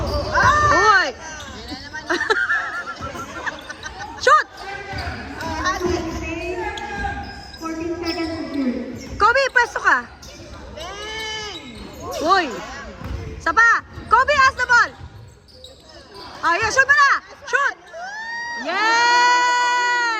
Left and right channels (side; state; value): both; identical; correlation 1.00